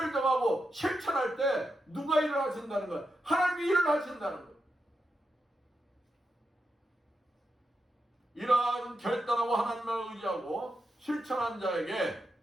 정하고 실천할 때 누가 일을 하신다는 거예요? 하나님이 일을 하신다는 거예요. 이러한 결단하고 하나님을 의지하고 실천한 자에게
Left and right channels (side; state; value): both; normal; correlation 0.86